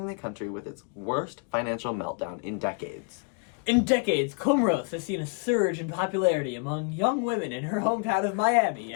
the country with its worst financial meltdown in decades. In decades, Comoros has seen a surge in popularity among young women in her hometown of Miami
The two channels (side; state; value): right; quieter; 35.5 dB